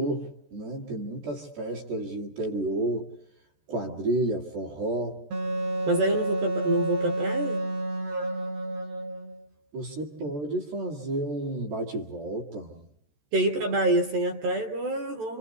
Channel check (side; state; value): left; late; 14 ms